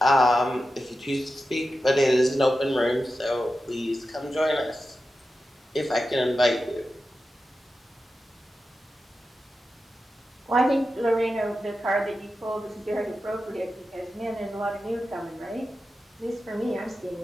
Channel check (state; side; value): normal; both; correlation 0.91